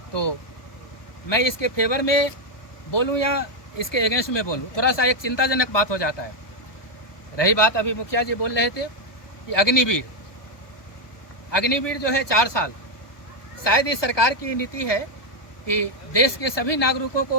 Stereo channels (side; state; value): right; late; 1.2 ms